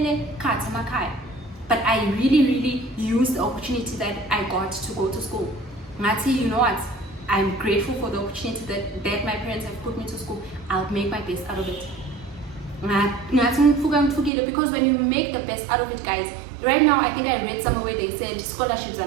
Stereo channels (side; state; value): left; drops out; at 14.3 s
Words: But I really used the opportunity that I got to go to school. Ngati, you know what? I'm grateful for the opportunity that my parents have put me to school. I'll make my best out of it. Because when you make the best out of it, guys, right now I think I read somewhere where they said scholarships are